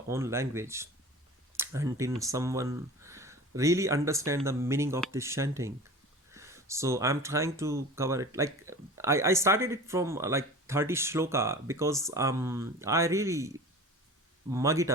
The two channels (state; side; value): normal; both; correlation 0.37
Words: own language until someone really understand the meaning of this chanting. So I'm trying to cover it, like I started it from like 30 shloka, because I really mug it